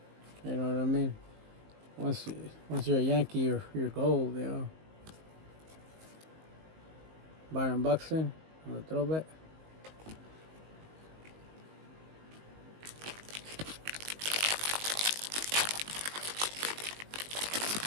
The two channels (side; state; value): left; late; 19 ms